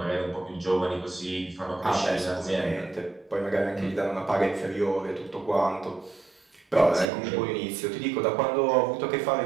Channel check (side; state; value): left; drops out; at 7.1 s